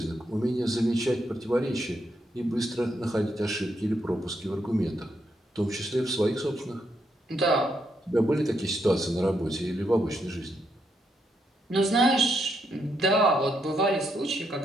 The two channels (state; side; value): normal; both; correlation 0.78